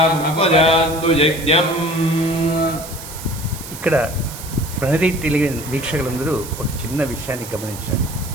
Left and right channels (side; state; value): right; noise; hiss, 13 dB below the sound